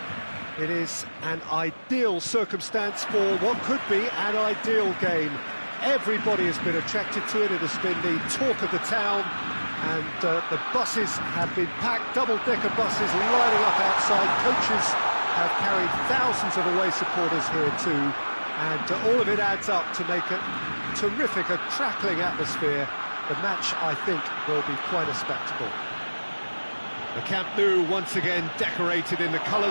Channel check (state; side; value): inverted; both; correlation -1.00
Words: It is an ideal circumstance for what could be an ideal game. Everybody has been attracted to it. It has been the talk of the town, and the buses have been packed, double-decker buses lining up outside. Coaches have carried thousands of away supporters here too, and all of it adds up to make a terrific, a crackling atmosphere. The match, I think, will be quite a spectacle. The Camp Nou once again decorated in the